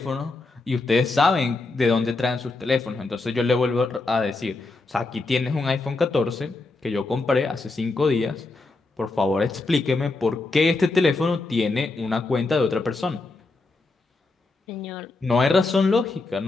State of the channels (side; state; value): right; quieter; 3.5 dB